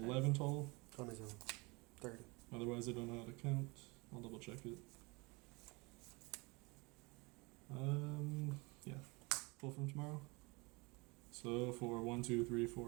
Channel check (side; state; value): left; quieter; 26.7 dB